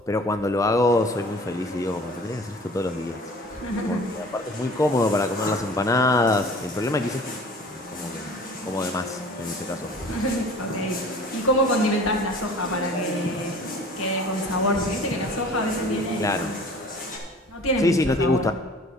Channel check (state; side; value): normal; both; correlation 0.46